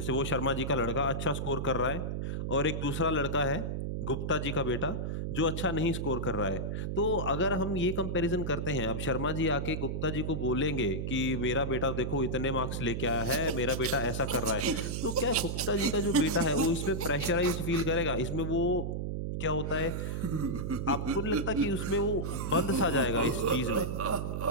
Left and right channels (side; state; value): right; noise; hum, 2 dB below the sound